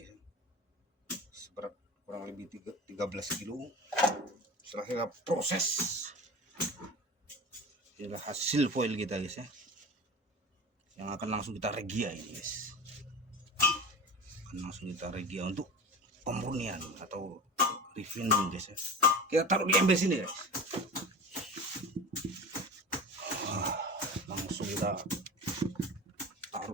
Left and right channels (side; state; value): both; normal; correlation 0.32